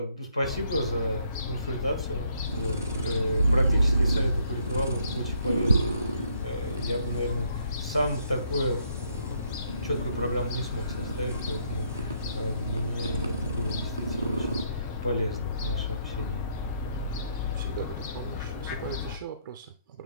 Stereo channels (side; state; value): both; inverted; correlation -0.70